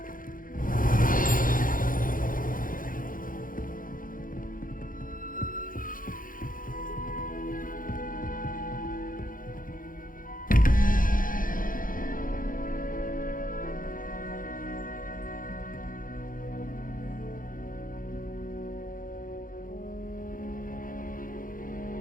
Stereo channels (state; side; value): late; right; 0.40 ms